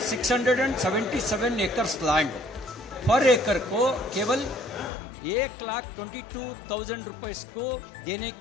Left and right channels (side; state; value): right; drops out; at 4.9 s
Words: एकर्स लैंड पर एकड़ को केवल 1,22,000 रुपये को देने